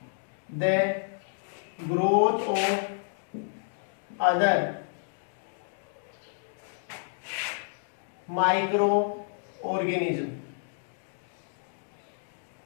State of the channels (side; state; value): right; silent; digital silence